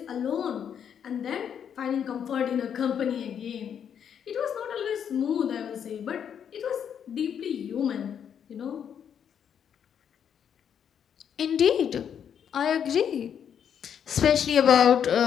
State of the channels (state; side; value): quieter; right; 8.3 dB